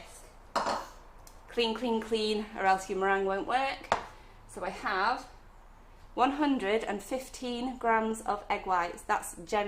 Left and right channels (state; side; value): identical; both; correlation 1.00